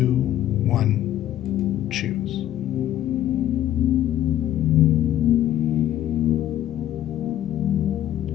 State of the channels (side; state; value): right; quieter; 12.3 dB